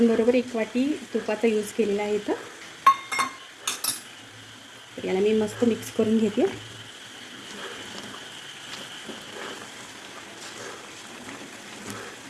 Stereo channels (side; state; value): both; identical; correlation 1.00